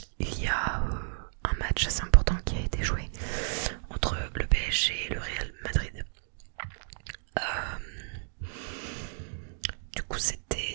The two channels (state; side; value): silent; left; digital silence